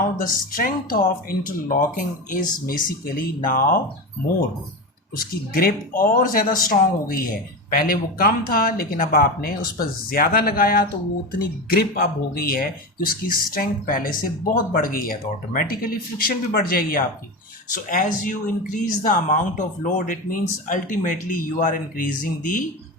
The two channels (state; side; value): normal; both; correlation 0.21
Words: the strength of interlocking is basically now more. उसकी ग्रिप और ज़्यादा स्ट्रांग हो गई है। पहले वो कम था लेकिन अब आपने उस पर ज़्यादा लगाया तो वो उतनी ग्रिप अब हो गई है कि उसकी स्ट्रेंथ पहले से बहुत बढ़ गई है, तो ऑटोमेटिकली फ्रिक्शन भी बढ़ जाएगी आपकी। So as you increase the amount of load, it means ultimately you are increasing the